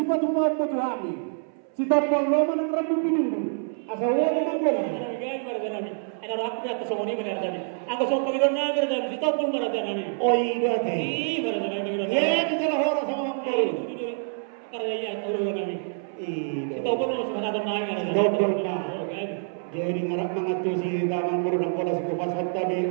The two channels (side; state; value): left; silent; 59 dB below the other